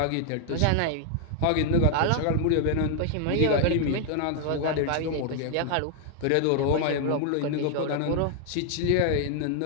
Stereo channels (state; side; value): different; both; correlation 0.00